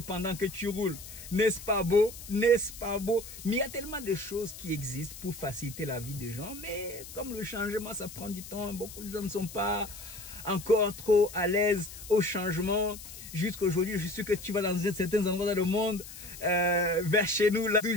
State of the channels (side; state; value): left; noise; hiss, 14 dB below the sound